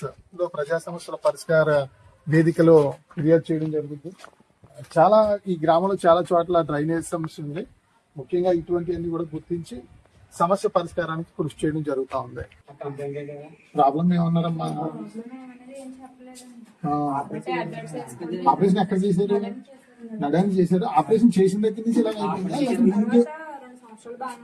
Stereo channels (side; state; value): both; identical; correlation 1.00